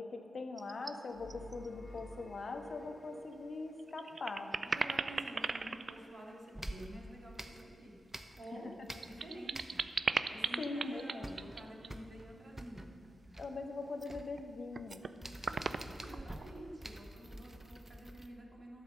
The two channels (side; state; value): both; normal; correlation 0.89